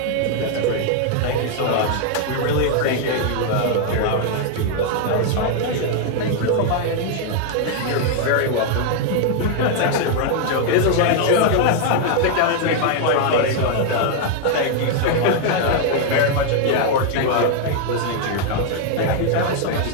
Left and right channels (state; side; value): different; both; correlation 0.00